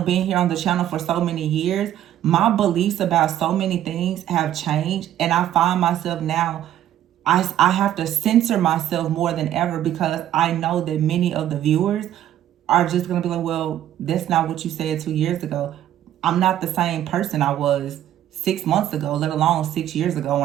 being here on the channel for so many years, my beliefs about so many things have changed. And I find myself now, I have to censor myself more than ever because I know that many of the viewers are just going to be like, well, that's not what you said 2 years ago. I'm not the same person I was 6 months ago, let alone 6 years ago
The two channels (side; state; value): left; quieter; 11.8 dB